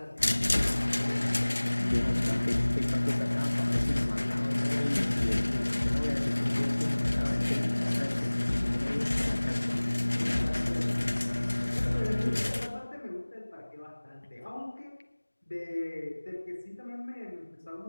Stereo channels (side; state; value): both; inverted; correlation -1.00